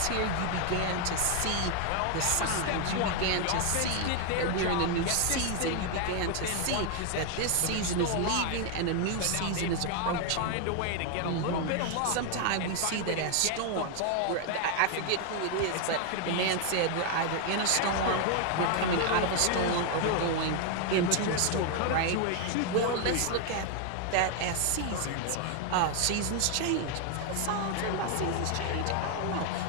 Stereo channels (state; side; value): different; both; correlation 0.00